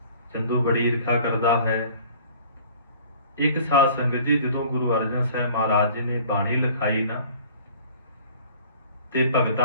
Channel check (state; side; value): inverted; both; correlation -0.50